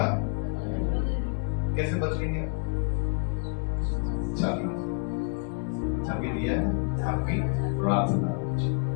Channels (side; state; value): right; quieter; 37.3 dB